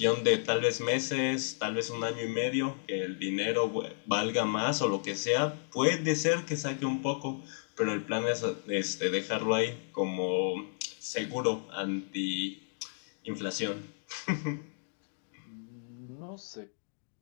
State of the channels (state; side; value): silent; right; digital silence